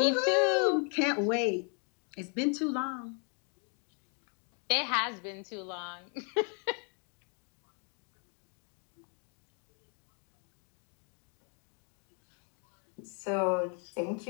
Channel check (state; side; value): quieter; right; 38.9 dB